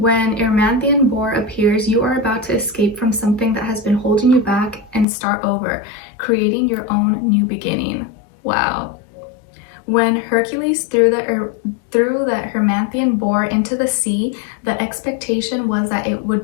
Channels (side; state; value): right; drops out; at 5.1 s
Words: Erymanthian Boar appears, you are about to escape from something that has been holding you back and start over, creating your own new beginning. Wow. When Hercules threw the Erymanthian boar into the sea, the expectation was that it would